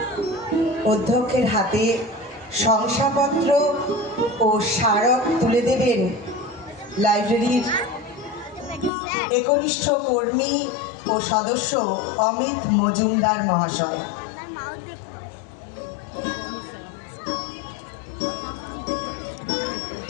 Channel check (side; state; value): right; drops out; at 8.9 s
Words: অধ্যক্ষের হাতে শংসাপত্র ও স্মারক তুলে দেবেন লাইব্রেরির একনিষ্ঠ কর্মী ও সদস্য অমিত মজুমদার মহাশয়।